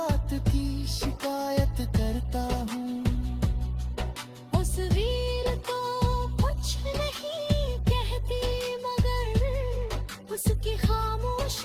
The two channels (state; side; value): identical; both; correlation 1.00